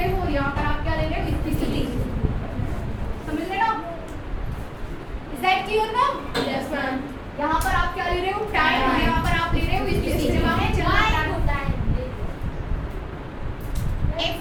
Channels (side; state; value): both; identical; correlation 1.00